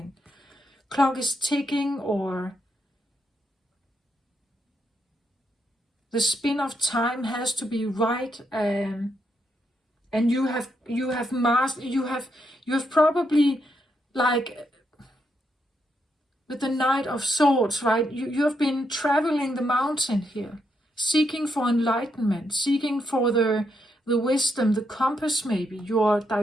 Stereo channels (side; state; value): both; normal; correlation 0.79